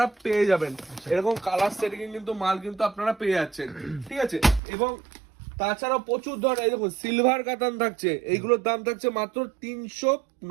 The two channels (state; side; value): drops out; left; at 4.6 s